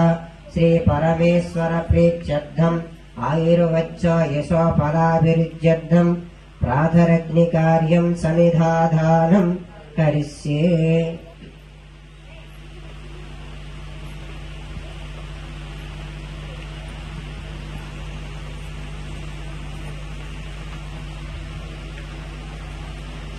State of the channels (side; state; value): both; identical; correlation 1.00